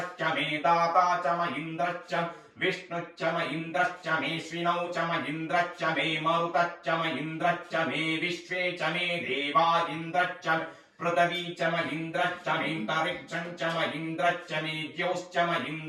मे दाता च म इन्द्रश्च विष्णुश्च म इन्द्रश्च मेऽश्विनौ च म इन्द्रश्च मे मरुतश्च म इन्द्रश्च मे विश्वे च मे देवा इन्द्रश्च पृथिवी च म इन्द्रश्च मेऽन्तरिक्षं च म इन्द्रश्च मे द्यौश्च म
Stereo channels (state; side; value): identical; both; correlation 1.00